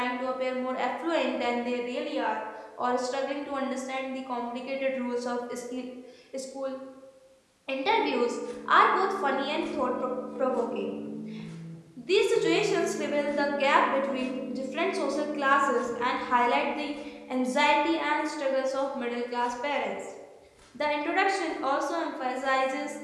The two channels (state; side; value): identical; both; correlation 1.00